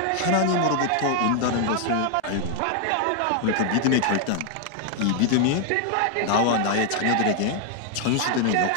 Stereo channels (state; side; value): different; both; correlation 0.00